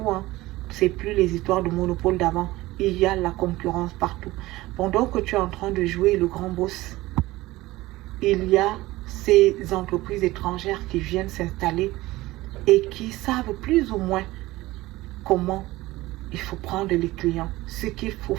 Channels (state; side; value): quieter; left; 18.5 dB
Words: C'est plus les histoires de monopole d'avant. Il y a la concurrence partout. Pendant que tu es en train de jouer le grand boss, il y a ces entreprises étrangères qui viennent s'installer et qui savent plus ou moins comment il faut prendre les clients, ce qu'il faut